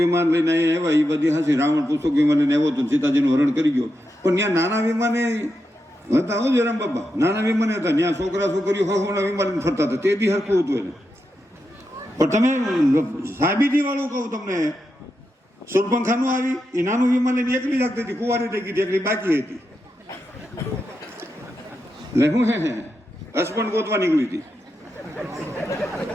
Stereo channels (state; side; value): normal; both; correlation 0.86